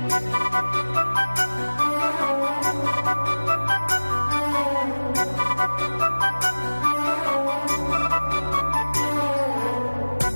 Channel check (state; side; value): inverted; both; correlation -1.00